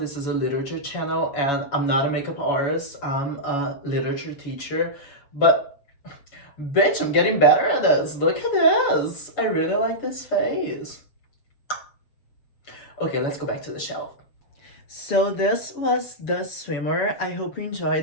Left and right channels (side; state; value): right; late; 7.1 ms